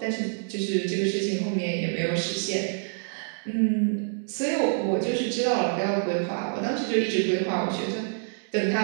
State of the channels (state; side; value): silent; left; digital silence